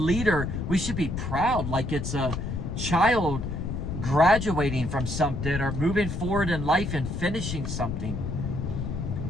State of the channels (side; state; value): left; noise; rumble, 4 dB below the sound